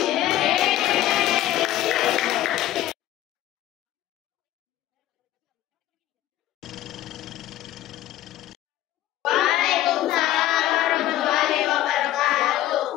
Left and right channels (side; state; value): right; quieter; 13.7 dB